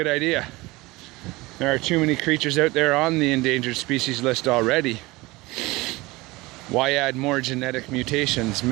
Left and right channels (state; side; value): quieter; left; 21.7 dB